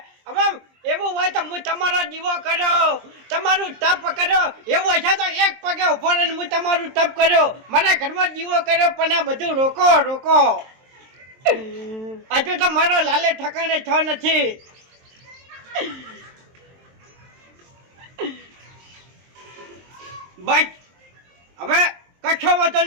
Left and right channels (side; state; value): left; late; 23 ms